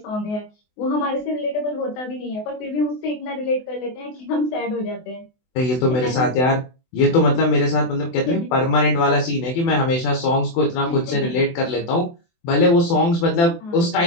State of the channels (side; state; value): right; late; 24 ms